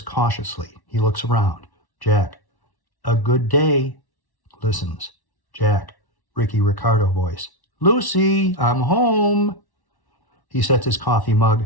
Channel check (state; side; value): late; right; 1.1 ms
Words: cautiously. He looks around. Jack, a good day. Listens. Jack, Ricky Ricardo voice. Lucy, I'm home. He sets his coffee mug